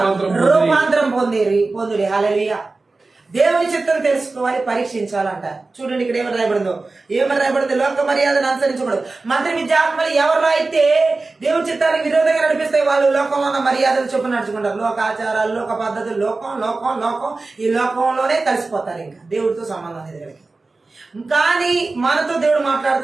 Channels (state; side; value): quieter; left; 3.6 dB